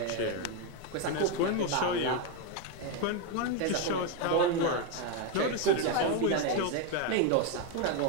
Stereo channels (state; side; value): different; both; correlation 0.02